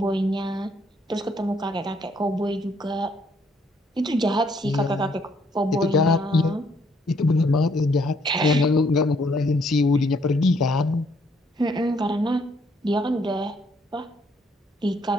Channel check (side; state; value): both; normal; correlation 0.68